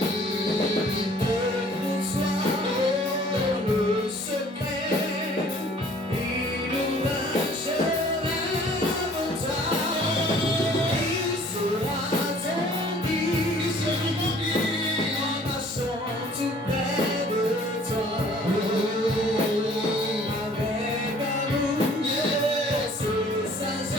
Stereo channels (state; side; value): normal; both; correlation 0.54